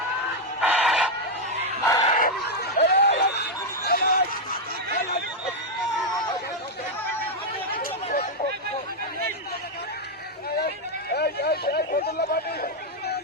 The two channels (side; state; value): both; normal; correlation 0.00